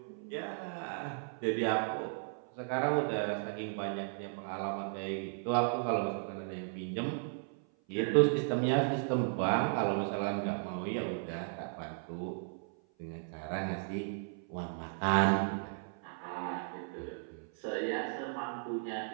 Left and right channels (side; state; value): left; silent; 54 dB below the other